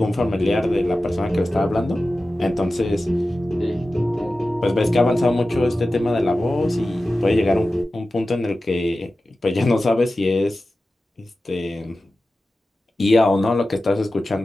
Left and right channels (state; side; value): normal; both; correlation 0.94